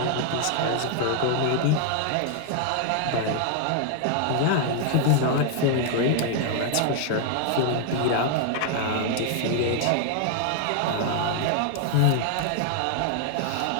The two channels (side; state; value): both; different; correlation 0.00